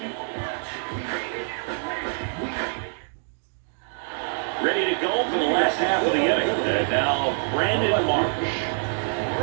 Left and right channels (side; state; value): left; silent; 61 dB below the other